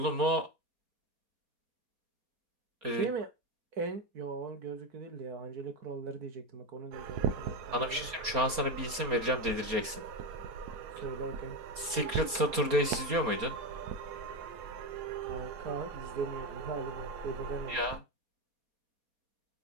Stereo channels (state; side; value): late; left; 4.3 ms